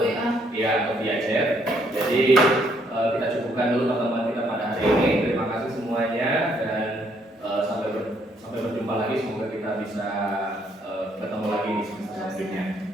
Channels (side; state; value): both; normal; correlation 0.69